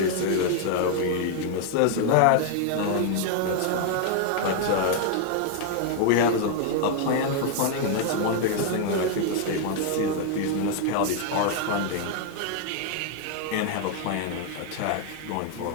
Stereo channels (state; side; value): different; both; correlation 0.00